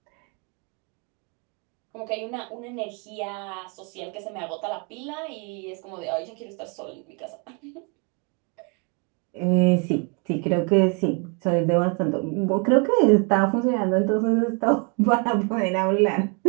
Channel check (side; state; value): left; quieter; 34.9 dB